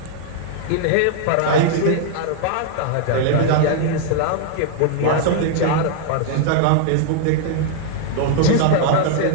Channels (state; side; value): different; both; correlation -0.01